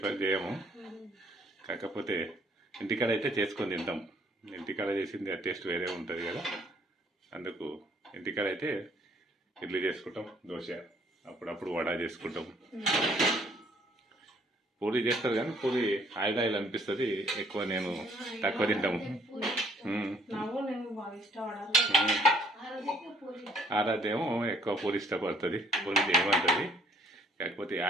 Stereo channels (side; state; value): both; normal; correlation 0.62